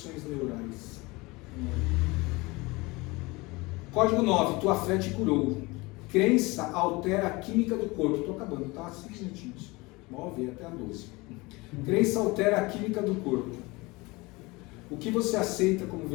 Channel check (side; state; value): right; quieter; 23.7 dB